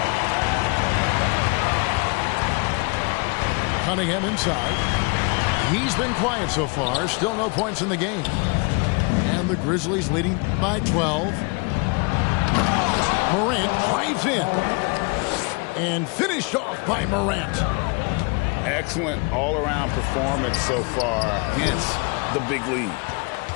Cunningham inside. He's been quiet so far. Still no points in the game. And the Grizzlies leading by 12. Morant drives in. And finished off by Morant. Excellent all-around performance so far, hence the big lead.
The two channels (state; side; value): quieter; right; 31.8 dB